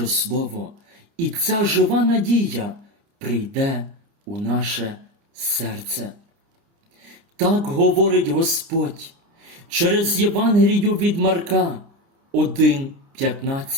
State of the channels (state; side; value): late; left; 30 ms